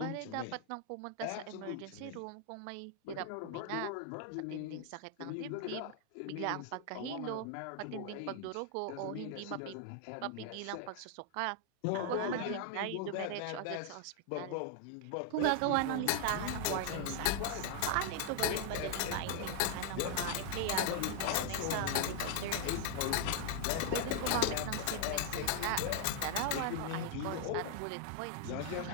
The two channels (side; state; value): both; different; correlation 0.00